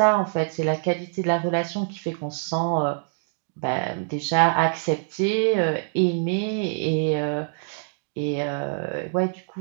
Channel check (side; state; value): left; silent; digital silence